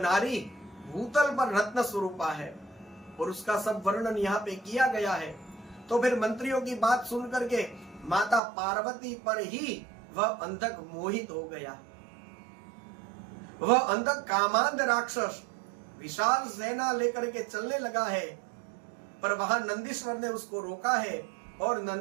भूतल पर रत्न स्वरूपा है और उसका सब वर्णन यहाँ पे किया गया है। तो फिर मंत्रियों की बात सुन करके माता पार्वती पर ही वह अंधक मोहित हो गया। वह अंधक कामांध राक्षस विशाल सेना लेकर के चलने लगा है, पर वहां नंदीश्वर ने उसको रोका है और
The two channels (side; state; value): left; drops out; at 8.4 s